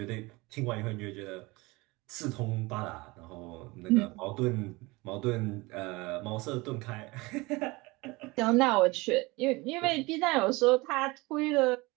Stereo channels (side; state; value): left; quieter; 23.3 dB